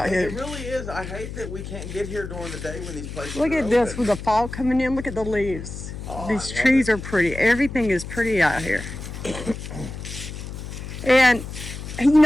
here. It really is. I hate that we can't get here during the day when these places Look are at this open. with the fall coming in. Look at the leaves. Oh, These I love trees it. are pretty. Everything is pretty out here. And, you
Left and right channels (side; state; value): left; noise; hum, 9 dB below the sound